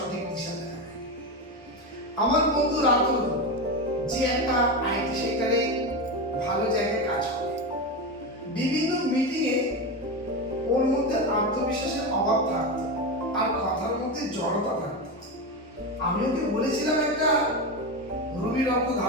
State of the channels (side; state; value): both; normal; correlation 0.17